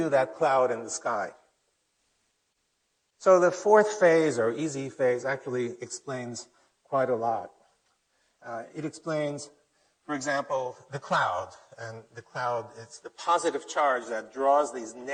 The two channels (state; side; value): identical; both; correlation 1.00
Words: that cloud in the sky. So the fourth phase, or easy phase, actually explains quite a lot. It explains, for example, the cloud. And the cloud, it's the positive charge that draws these